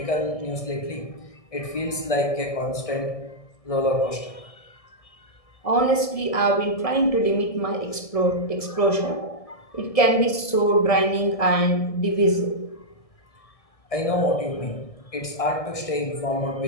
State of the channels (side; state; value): right; late; 1.6 ms